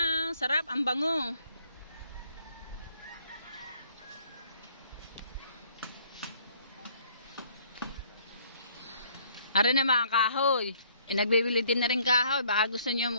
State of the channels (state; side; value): inverted; both; correlation -0.62